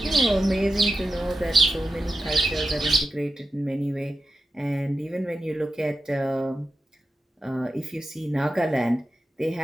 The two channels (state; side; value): normal; both; correlation 0.90